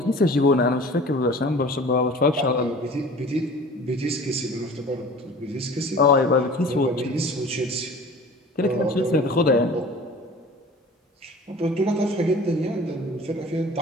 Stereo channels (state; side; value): normal; both; correlation 0.43